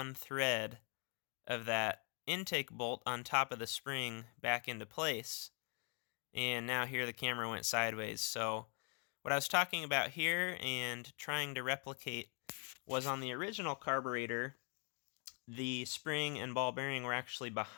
thread of that intake bolt on top of the spring back into place. And now here the camera went sideways. So what I was talking about here and trying to replicate was on the original carburetor, the spring and ball bearing were actually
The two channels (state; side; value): quieter; right; 36.4 dB